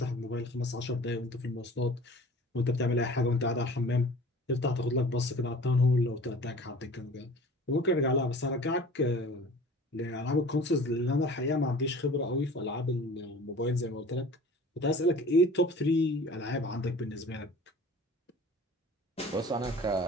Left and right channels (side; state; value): both; normal; correlation 0.44